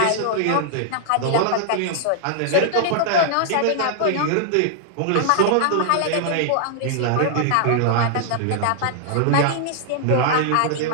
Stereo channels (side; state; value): both; different; correlation -0.01